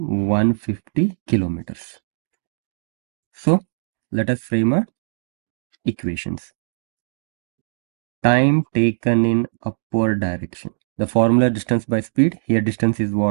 kilometers. So let us frame a equations. Time taken in upward direction. The formula distance by speed. Here distance is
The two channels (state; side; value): silent; left; digital silence